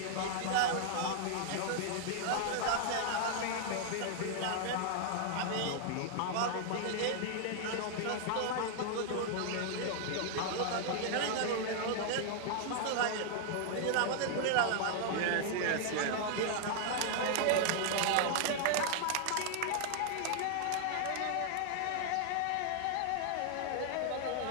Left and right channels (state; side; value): different; both; correlation 0.00